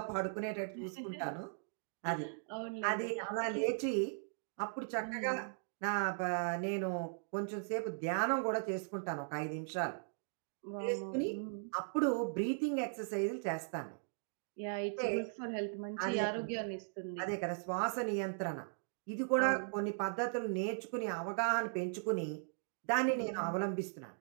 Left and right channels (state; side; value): silent; left; digital silence